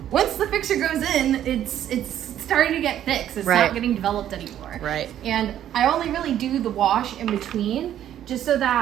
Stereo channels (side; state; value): left; quieter; 11.1 dB